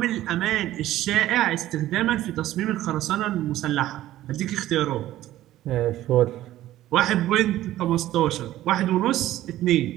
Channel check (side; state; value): left; quieter; 14.4 dB